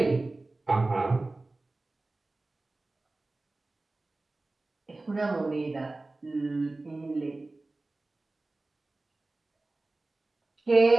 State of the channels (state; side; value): quieter; left; 3.1 dB